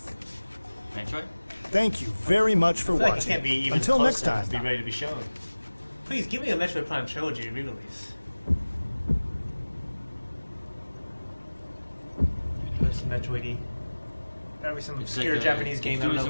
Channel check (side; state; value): both; inverted; correlation -1.00